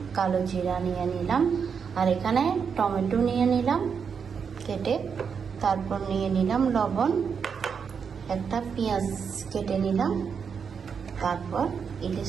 কালো জিরা নিয়ে নিলাম, আর এখানে টমেটো নিয়ে নিলাম কেটে, তারপর নিয়ে নিলাম লবণ, একটা পেঁয়াজ কেটে নিলাম, তারপর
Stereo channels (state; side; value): quieter; left; 6.4 dB